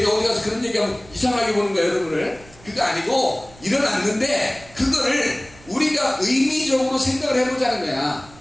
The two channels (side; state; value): right; noise; rumble, 23 dB below the sound